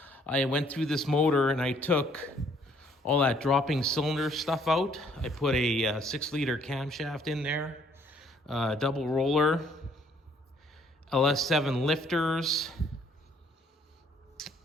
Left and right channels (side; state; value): both; normal; correlation 0.64